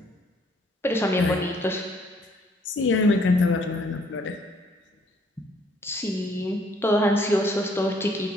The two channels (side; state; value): both; normal; correlation 0.64